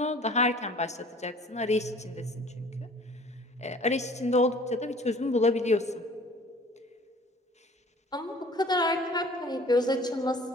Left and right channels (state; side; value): normal; both; correlation 0.49